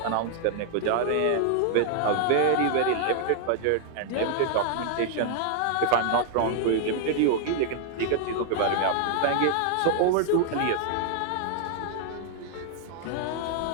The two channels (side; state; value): both; different; correlation 0.00